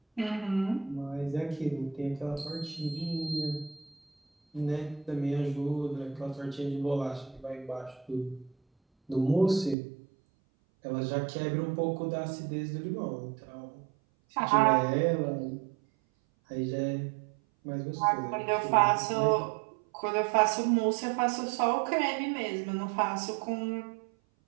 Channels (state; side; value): drops out; left; at 9.8 s